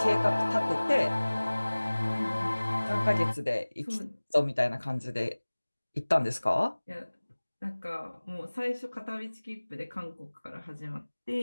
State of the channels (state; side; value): inverted; both; correlation -1.00